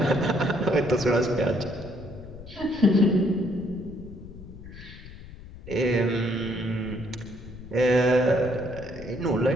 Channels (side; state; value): left; noise; rumble, 16 dB below the sound